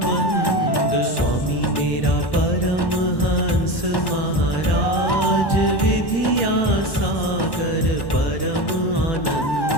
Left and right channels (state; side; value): late; right; 1.1 ms